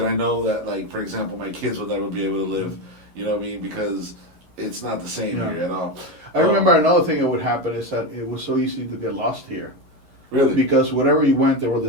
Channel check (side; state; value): left; late; 11 ms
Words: I know that, like, for example, my kids will never be able to live. You know what I mean? Because it's not the same Yeah. here at all. I remember another thing that would happen is that it was so easy to get lost here. Really? Because wherever you went, there were the